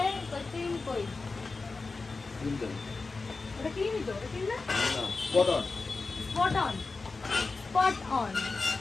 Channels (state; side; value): quieter; right; 4.0 dB